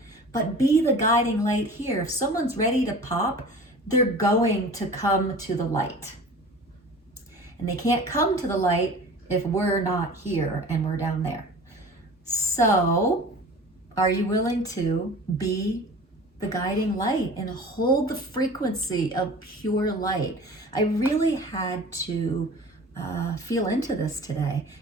but be the guiding light here. If someone's ready to pop, they're going to come to the light. And they can't come to the light if we're not here and we're down there. So, are you willing to be the guiding light and hold the frequency of pure light? I really had to feel into this today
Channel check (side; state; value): both; normal; correlation 0.40